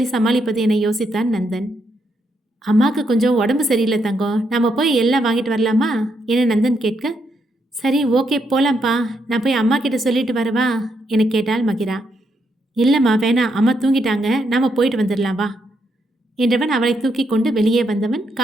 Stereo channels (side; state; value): both; normal; correlation 0.78